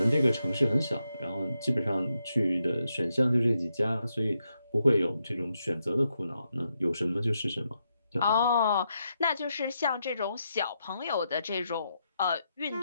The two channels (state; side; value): inverted; both; correlation -0.83